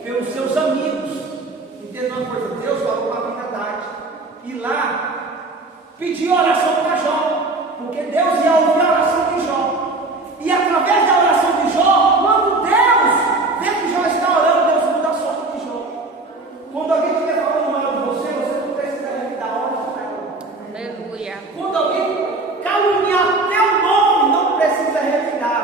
Pelos seus amigos. Entenda uma coisa, Deus falou para a verdade. E lá, pediu oração para Jó. Porque Deus ia ouvir a oração de Jó. E através da oração de Jó, quando Deus vê que Jó está orando, Deus muda a sorte de Jó. Quando alguém estiver falando mal de você, você não precisa revidar hora para ela. Aleluia. Quando alguém caluniar teu nome, não precisa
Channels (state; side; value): quieter; left; 3.2 dB